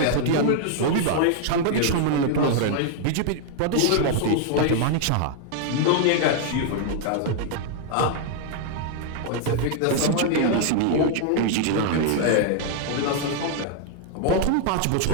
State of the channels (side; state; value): both; different; correlation 0.00